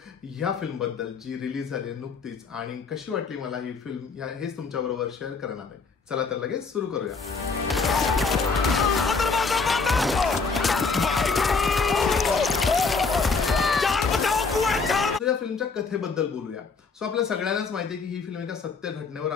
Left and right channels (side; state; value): right; quieter; 4.6 dB